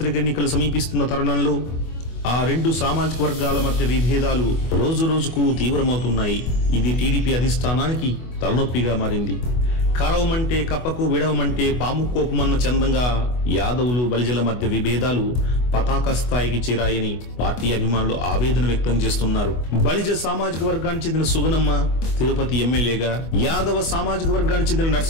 ఎన్నికలు సమీపిస్తున్న తరుణంలో ఆ రెండు సామాజిక వర్గాల మధ్య విభేదాలు రోజు రోజుకు తీవ్రమవుతున్నాయి. ఇది టీడీపీ అధిష్టానానికి తలనొప్పిగా మారింది. కరవమంటే కప్పకు విడవమంటే పాము కోపమన్న చందంగా యాదవులు బలిజల మధ్య విభేదాలు పతాక స్థాయికి చేరాయని పార్టీ అభిమానులు ఆవేదన వ్యక్తం చేస్తున్నారు. బలిజ సామాజిక వర్గానికి చెందిన సుగనమ్మ తిరుపతి ఎమ్మెల్యేగా, యాదవ సామాజిక వర్గానికి చెందిన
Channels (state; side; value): late; right; 24 ms